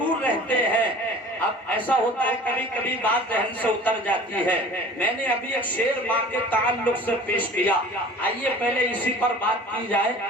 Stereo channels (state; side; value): normal; both; correlation 0.43